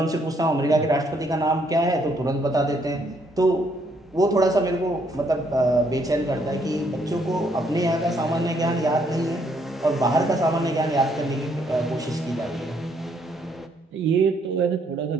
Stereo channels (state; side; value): normal; both; correlation 0.70